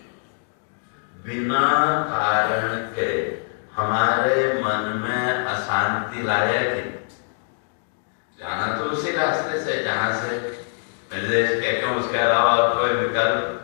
बिना कारण के हमारे मन में अशांति लाया कि जाना तो उसी रास्ते से जहां से निर्देश कहते हैं, उसके अलावा कोई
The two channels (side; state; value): right; silent; 63 dB below the other